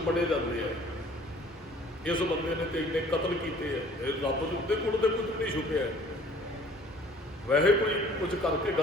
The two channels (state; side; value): normal; both; correlation 0.53